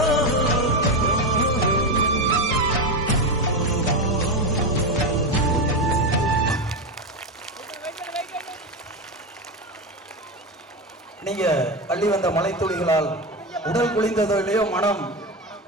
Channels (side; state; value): both; normal; correlation 0.15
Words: நீங்க அள்ளி வந்த மலை துளிகளால் உடல் குளிர்ந்ததோ இல்லையோ மனம்